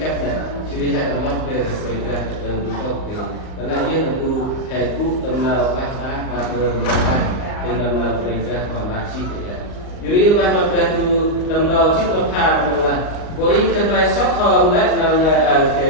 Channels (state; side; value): late; right; 38 ms